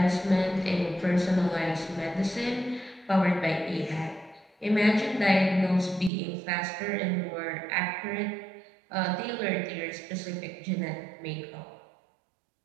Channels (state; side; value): drops out; left; at 6.1 s